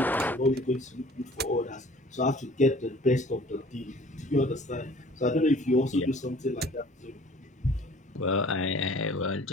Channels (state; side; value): normal; both; correlation 0.50